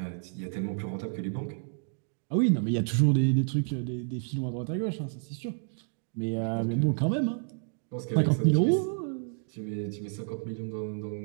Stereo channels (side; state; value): left; silent; digital silence